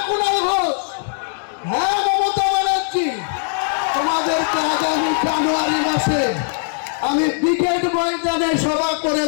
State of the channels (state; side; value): silent; right; digital silence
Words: কুণাল ঘোষ, হ্যাঁ মমতা ব্যানার্জি, তোমাদেরকে আগামী জানুয়ারি মাসে আমি ব্রিগেড ময়দানে সভা করে